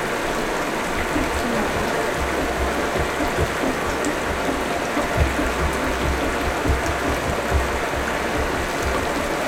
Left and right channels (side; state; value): both; identical; correlation 1.00